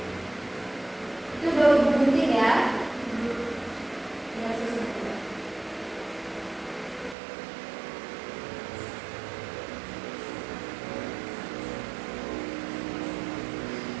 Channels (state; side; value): drops out; left; at 7.2 s